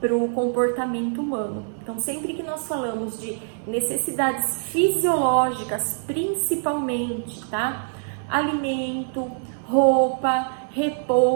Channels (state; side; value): silent; left; 62 dB below the other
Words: para o comportamento humano. Então sempre que nós falamos de necessidades fisiológicas, principalmente, tá? Alimento, roupa,